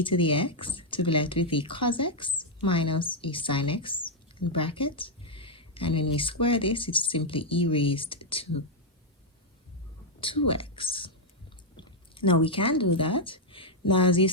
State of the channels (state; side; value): normal; both; correlation -0.02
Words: to the x, to be left with a cos x minus a sin x in bracket. And when we square this, it's simply e raised to 2x. Now we can do that. Now as you